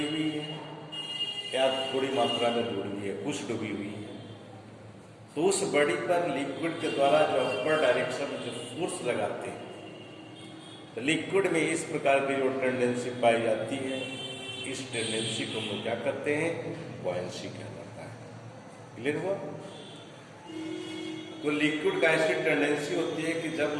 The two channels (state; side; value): identical; both; correlation 1.00